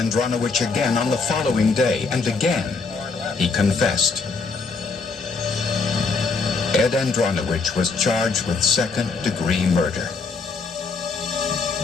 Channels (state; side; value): quieter; right; 4.4 dB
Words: again on the following day, and again he confessed. Ed Andronowich was charged with second-degree murder.